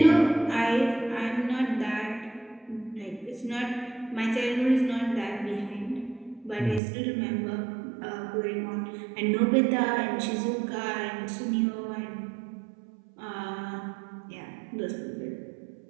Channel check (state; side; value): drops out; left; at 6.8 s